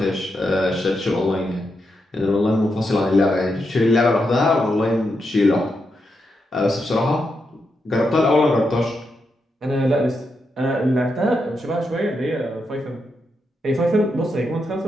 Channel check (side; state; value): both; normal; correlation 0.84